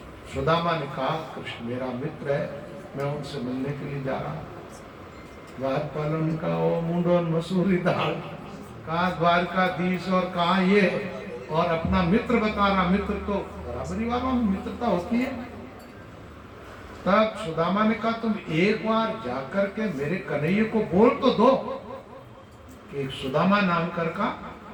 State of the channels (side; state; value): both; identical; correlation 1.00